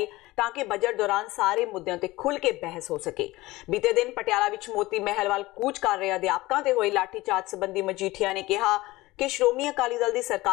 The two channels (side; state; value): right; quieter; 19.4 dB